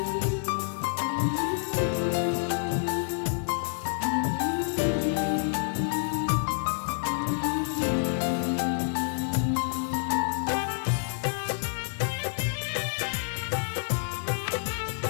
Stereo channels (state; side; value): silent; right; 59 dB below the other